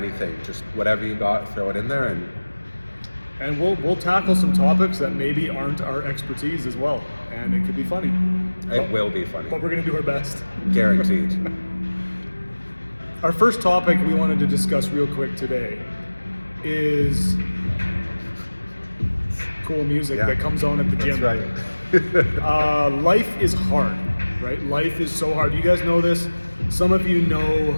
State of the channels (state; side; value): inverted; both; correlation -1.00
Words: Just whatever you got, throw it in there, and we'll tackle some topics that maybe aren't our expertise as well, and it could be funny. It will be funny. But we're going to do our best. Guaranteed. Our first topic we wanted to discuss real quick today is cool music that comes on at the gym. That's right. Life is hard, right? Life is so hard. You guys know this. Some of you know